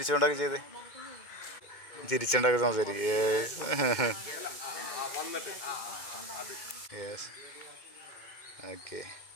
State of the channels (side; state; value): right; late; 2.2 ms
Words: ചെയ്തേ, ചിരിച്ചുകൊണ്ടൊക്കെ സംസാരിക്കും. Yes okay.